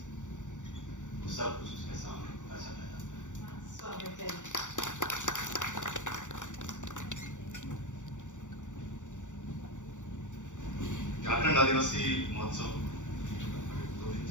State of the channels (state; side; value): late; right; 0.86 ms